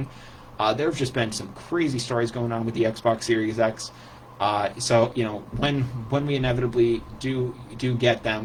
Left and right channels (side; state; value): both; identical; correlation 1.00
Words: There have just been some crazy stories going on with the Xbox Series X. So when we inevitably do get